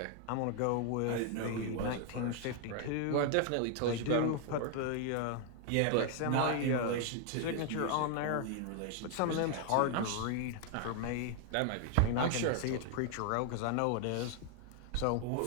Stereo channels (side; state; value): both; different; correlation 0.00